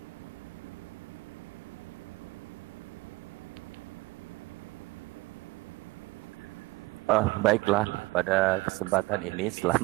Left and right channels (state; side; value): quieter; left; 22.0 dB